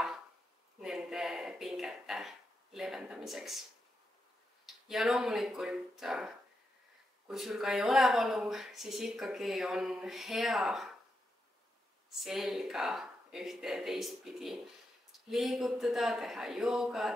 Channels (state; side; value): normal; both; correlation 0.85